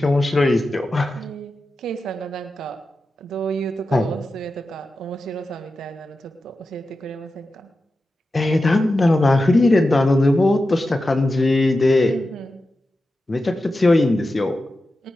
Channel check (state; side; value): normal; both; correlation 0.92